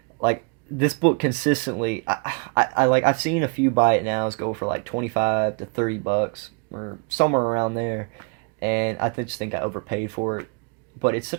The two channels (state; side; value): quieter; left; 33.7 dB